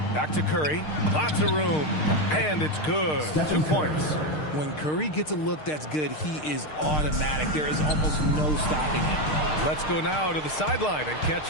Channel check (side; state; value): right; late; 6.5 ms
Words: Back to Curry. Lots of room. And it's good. 2 points. When Curry gets a look that's good, he is automatic. There is almost no stopping him. Let's go now to the sideline and catch